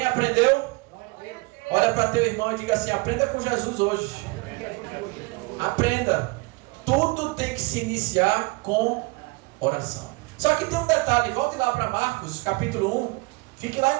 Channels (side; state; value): left; quieter; 26.2 dB